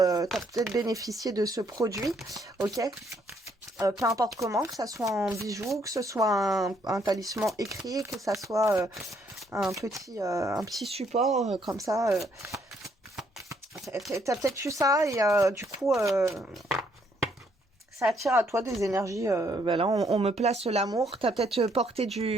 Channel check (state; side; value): normal; both; correlation 0.70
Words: bénéficié de ce produit. Ok. Peu importe comment, que ça soit en bijoux, que ce soit un talisman écrit, que ça soit un petit support comme ça. T'as peut-être eu ça et du coup... ça attire à toi des énergies. Ben là, on me place l'amour. T'as peut-être porté